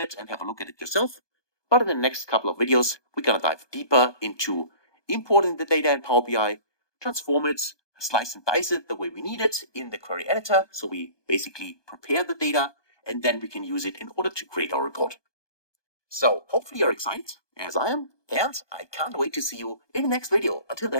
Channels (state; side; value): late; right; 1.2 ms